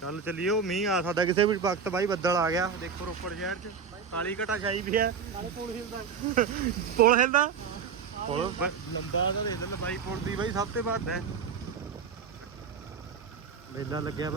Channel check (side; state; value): left; quieter; 6.1 dB